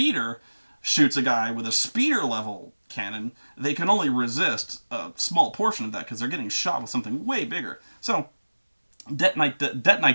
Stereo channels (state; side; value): inverted; both; correlation -1.00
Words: shoots a guy with a speeder level cannon, they can only resist a small portion of that because they're getting shot with something way bigger. So